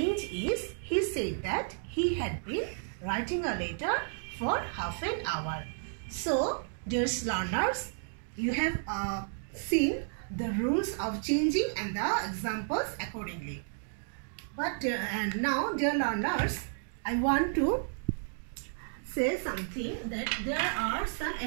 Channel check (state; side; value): silent; left; digital silence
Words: is he said that he had been writing a letter for half an hour. So, dear learners, you have seen the rules of changing and the examples accordingly. But and now, dear learners, I want to say something that there are some